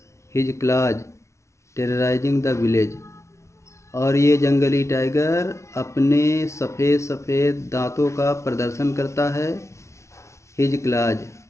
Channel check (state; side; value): late; right; 0.14 ms